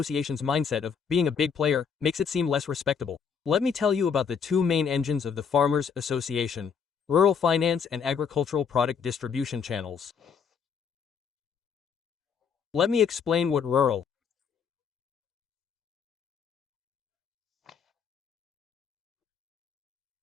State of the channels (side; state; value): right; quieter; 6.5 dB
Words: mindset of being a big player makes it seem less respectable. Let me tell you about the two main engines of the farmers' association: rural finance and agricultural product distribution channels. Let me explain what rural